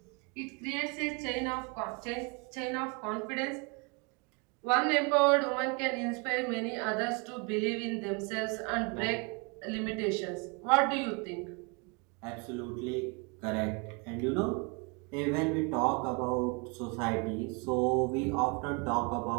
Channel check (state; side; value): quieter; left; 31.7 dB